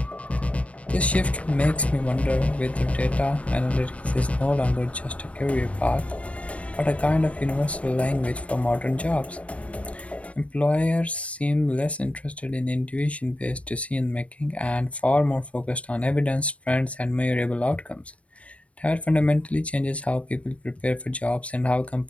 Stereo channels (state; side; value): late; right; 0.065 ms